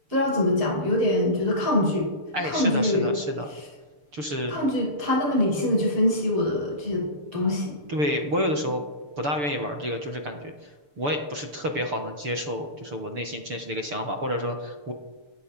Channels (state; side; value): late; left; 6.8 ms